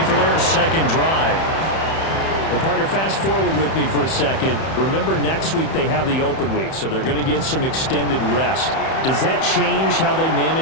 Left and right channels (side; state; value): right; late; 31 ms